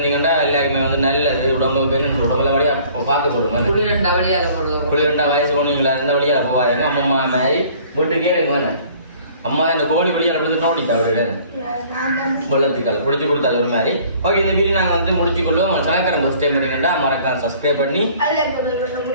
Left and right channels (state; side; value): inverted; both; correlation -0.54